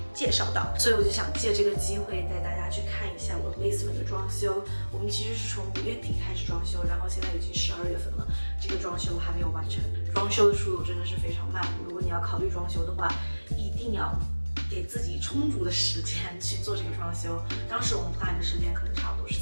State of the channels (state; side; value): inverted; both; correlation -1.00